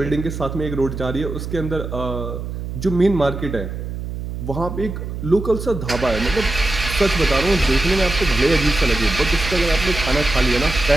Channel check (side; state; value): right; noise; hum, 7 dB below the sound